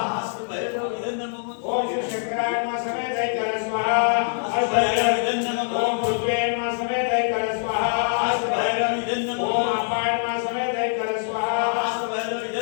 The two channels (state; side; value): silent; right; digital silence